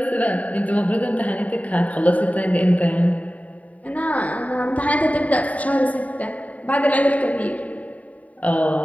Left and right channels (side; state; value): right; late; 0.070 ms